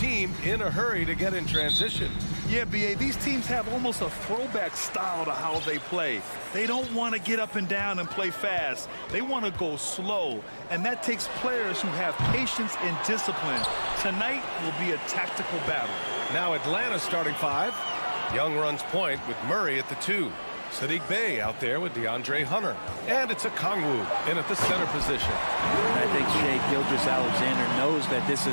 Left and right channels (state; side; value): inverted; both; correlation -1.00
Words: in a hurry to get in transition. Yeah, B.A., these teams have almost a throwback style to how they play. They don't want to get up and down and play fast. They want to go slow, and that takes players who have patience and discipline. Tonight will be a tactical battle. Now Atlanta's starting 5. Young runs point with Murray at the 2. Sadiq Bey out there with DeAndre Hunter. And it's a Kongwu in at the center position. I think Shea Gilgeous-Alexander knows that this